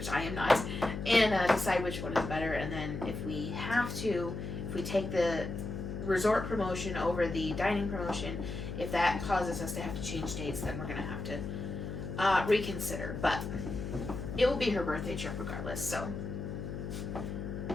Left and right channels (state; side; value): noise; left; hum, 6 dB below the sound